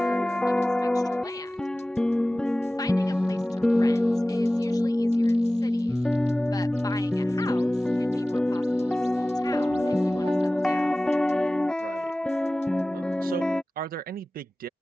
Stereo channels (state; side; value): normal; both; correlation 0.97